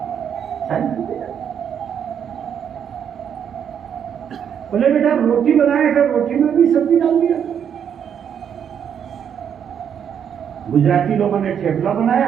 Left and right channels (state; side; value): quieter; left; 8.3 dB